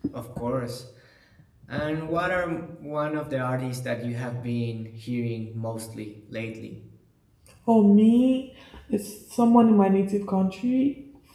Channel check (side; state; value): both; identical; correlation 1.00